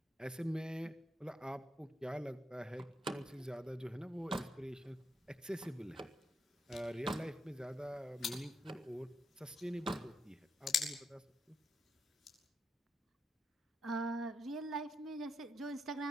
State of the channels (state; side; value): normal; both; correlation 0.81